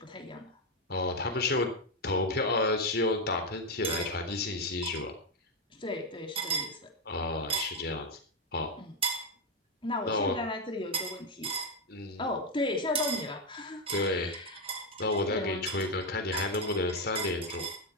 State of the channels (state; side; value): normal; both; correlation 0.05